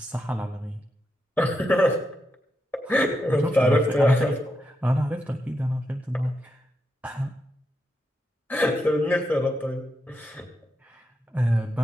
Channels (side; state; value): both; normal; correlation 0.85